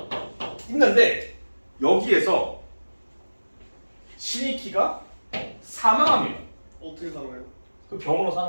있는데 여기에서 신익희가 사망합니다. 어떻게 살아요? 그 병으로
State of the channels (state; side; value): inverted; both; correlation -1.00